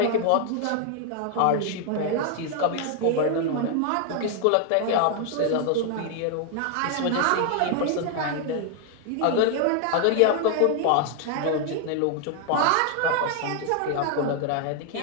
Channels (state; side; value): different; both; correlation 0.00